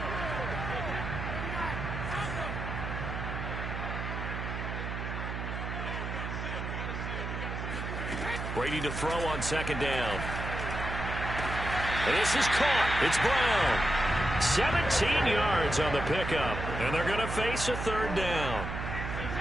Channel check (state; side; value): noise; right; hum, 5 dB below the sound